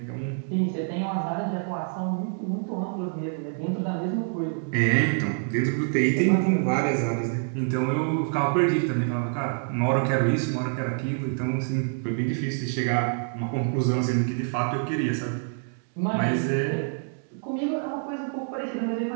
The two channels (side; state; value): left; silent; 59 dB below the other